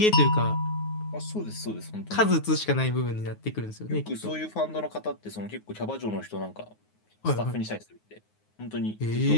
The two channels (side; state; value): right; late; 9.5 ms